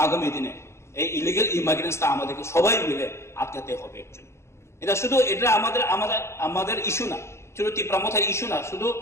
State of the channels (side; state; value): right; late; 0.13 ms